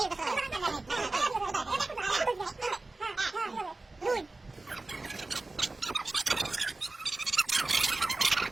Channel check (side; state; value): left; quieter; 3.1 dB